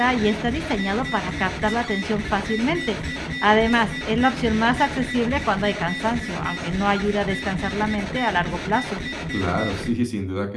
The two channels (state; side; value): identical; both; correlation 1.00